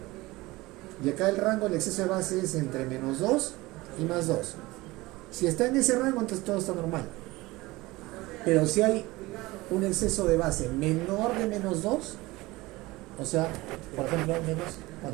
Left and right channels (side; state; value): left; quieter; 20.5 dB